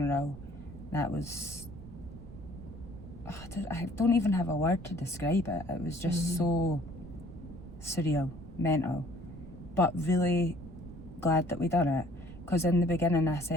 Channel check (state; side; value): noise; right; rumble, 15 dB below the sound